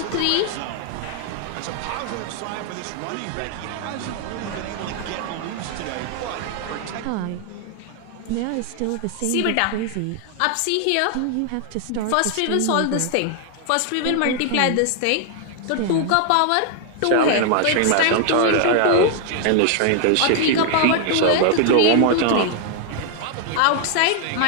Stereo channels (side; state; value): both; different; correlation 0.00